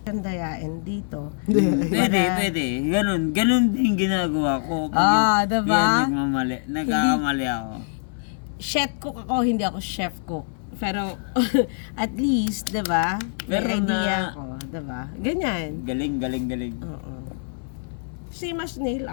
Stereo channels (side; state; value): right; silent; digital silence